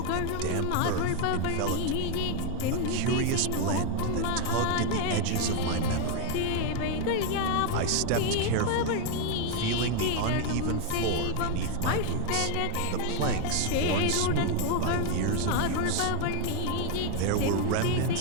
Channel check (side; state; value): both; different; correlation 0.01